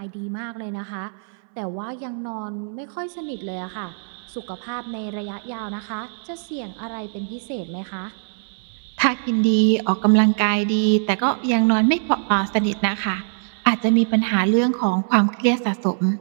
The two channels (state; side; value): silent; left; 64 dB below the other